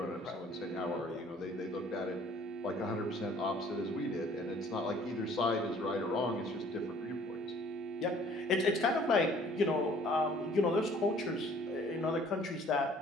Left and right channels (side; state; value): both; normal; correlation 0.55